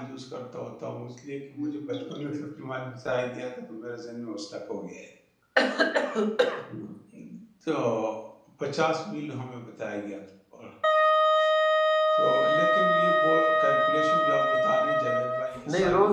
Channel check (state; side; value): identical; both; correlation 1.00